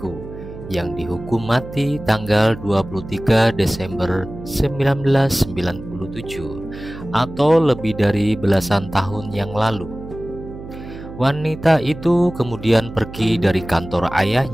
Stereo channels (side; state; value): right; noise; hum, 13 dB below the sound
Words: yang dihukum mati tanggal 23 Desember 1997 atau lebih dari belasan tahun yang lalu. Wanita itu kemudian pergi dari kantor